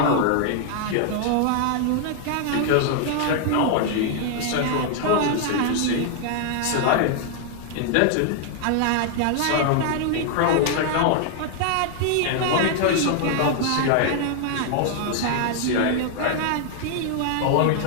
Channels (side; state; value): both; different; correlation 0.00